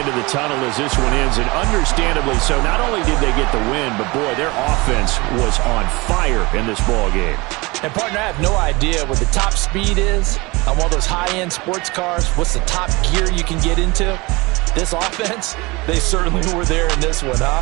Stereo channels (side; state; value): left; quieter; 24.1 dB